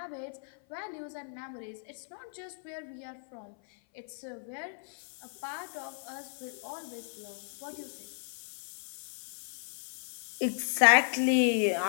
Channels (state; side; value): silent; right; 55 dB below the other